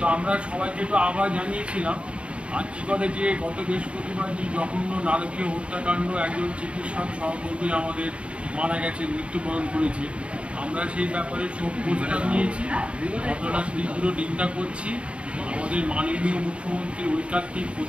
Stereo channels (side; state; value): left; late; 0.059 ms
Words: আমরা সবাইকে একটু আবার জানিয়েছিলাম আর্জিকরে যে গত বৃহস্পতিবার যে জঘন্য নারকীয় হত্যাকাণ্ড, একজন চিকিৎসক সহকর্মী আমাদের মারা গেছে, মৃত্যুবরণ করেছে। আমরা সেই ব্যাপারে শোক প্রস্তাব নিয়েছি, ঘটনার তীব্র নিন্দা করছি। আমাদের মাননীয় মুখ্যমন্ত্রীর ঐকান্তিক